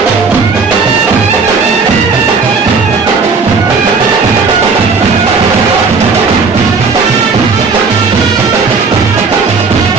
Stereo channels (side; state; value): left; quieter; 4.8 dB